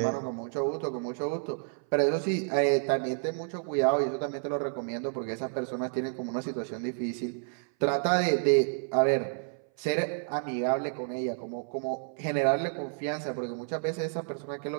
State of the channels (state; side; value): silent; left; 58 dB below the other